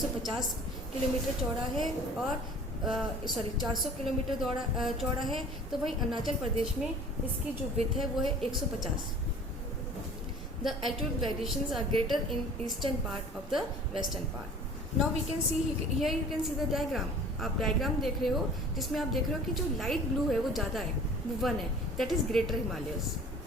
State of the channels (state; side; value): normal; both; correlation 0.46